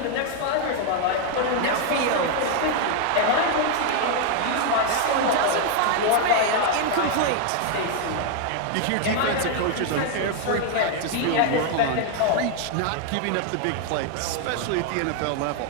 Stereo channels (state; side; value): different; both; correlation 0.00